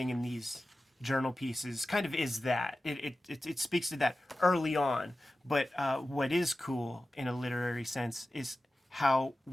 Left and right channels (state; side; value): normal; both; correlation 0.95